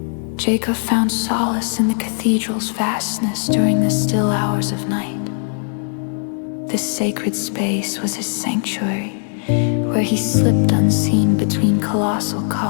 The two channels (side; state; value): right; silent; 60 dB below the other